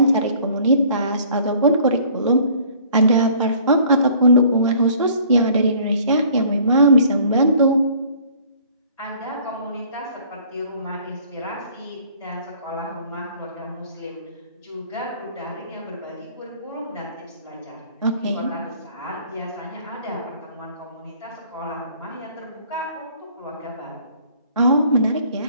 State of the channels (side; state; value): both; inverted; correlation -0.54